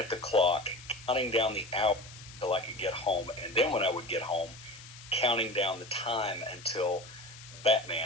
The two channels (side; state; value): left; noise; hiss, 17 dB below the sound